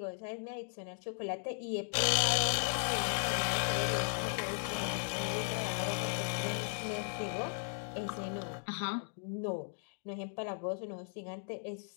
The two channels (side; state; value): right; silent; 53 dB below the other